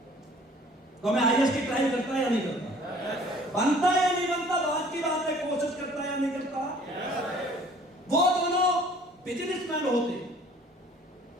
तो मैं आईएएस की ट्राई करता या नहीं करता? बनता या नहीं बनता? बात की बात है, कोशिश करता या नहीं करता? वो दोनों बिजनेसमैन होते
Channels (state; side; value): normal; both; correlation 0.53